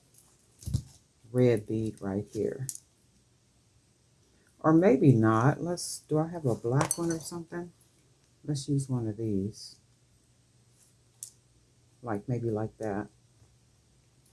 red bead right here. Or maybe not. Do I have a black one or something? Let's use one of these. Maybe like that.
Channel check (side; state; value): both; identical; correlation 1.00